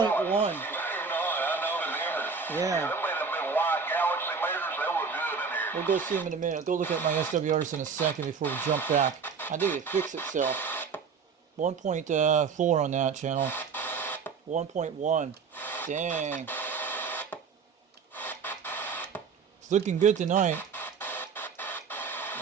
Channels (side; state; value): left; quieter; 5.5 dB